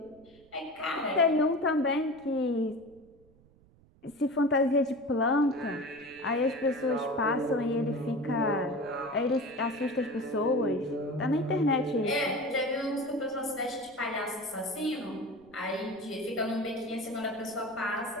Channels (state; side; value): noise; right; rumble, 28 dB below the sound